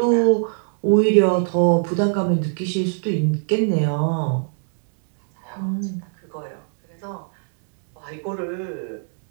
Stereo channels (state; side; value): silent; left; digital silence